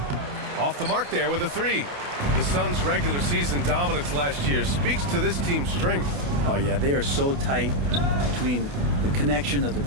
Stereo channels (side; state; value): left; late; 28 ms